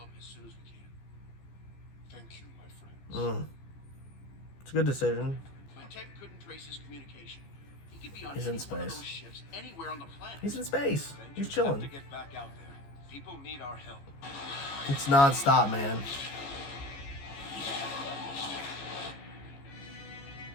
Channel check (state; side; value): late; right; 14 ms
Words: as soon as we can. Thank you, my friends. It's a good decision. My tech couldn't trace his communication. He could be on He's any in one of space. those ships anywhere on the planet. He's in space. He's Avengers have chilling. to get back out there. People need our help. It's non-stop, man.